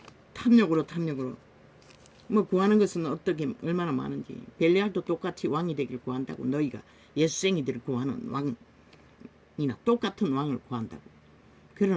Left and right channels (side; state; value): both; identical; correlation 1.00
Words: 탐욕으로 구하는 것은 어떻게 얼마나 많은지. 벨리알도 똑같이 왕이 되길 구한다고. 너희가 예수생이들을 구하는 왕이나 똑같은 왕을 구한다고.